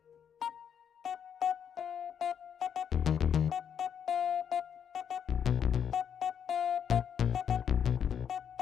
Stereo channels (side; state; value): right; quieter; 8.1 dB